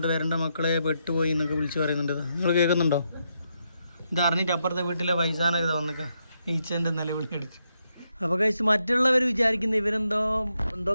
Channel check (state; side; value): inverted; both; correlation -0.81